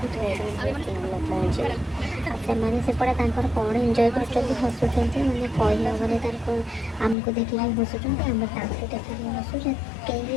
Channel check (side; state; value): right; drops out; at 7.2 s